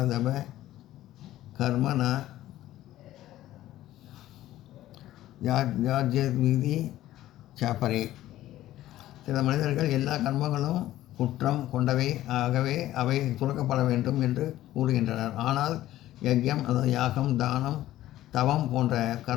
கர்மன யாஜ்யவிதி சாப்பரே. சில மனிதர்கள் எல்லா கர்மங்களும் குற்றம் கொண்டவை ஆகவே அவை துறக்கப்பட வேண்டும் என்று கூறுகின்றனர். ஆனால் யஜ்யம், அதாவது யாகம், தானம், தவம் போன்ற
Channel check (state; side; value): quieter; right; 14.4 dB